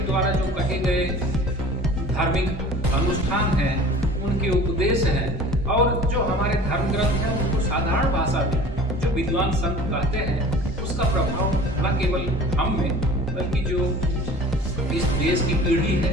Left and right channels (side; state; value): both; normal; correlation 0.44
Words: द्वारा जो कहे गए धार्मिक अनुष्ठान हैं, उनके उनके उपदेश हैं और जो हमारे धर्म ग्रंथ हैं उनको साधारण भाषा में जो विद्वान संत कहते हैं उसका प्रभाव न केवल हम में बल्कि जो इस देश की पीढ़ी है,